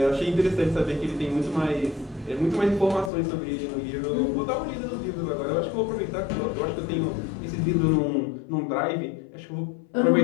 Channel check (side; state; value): right; drops out; at 3.1 s